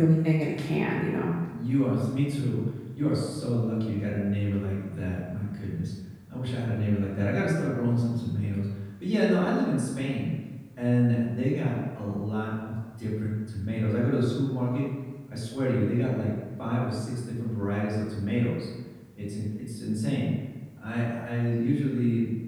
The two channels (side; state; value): both; identical; correlation 1.00